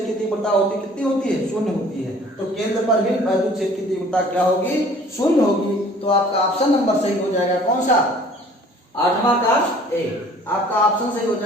की तीव्रता होती है कितनी होती है, शून्य होती है। तो केंद्र पर भी वैद्युत क्षेत्र की तीव्रता क्या होगी, शून्य होगी। तो आपका ऑप्शन नंबर सही हो जाएगा, कौन सा, 8वां का ए। आपका ऑप्शन सही हो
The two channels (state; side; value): normal; both; correlation 0.52